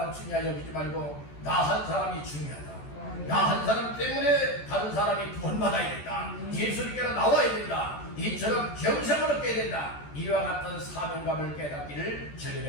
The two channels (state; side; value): late; right; 14 ms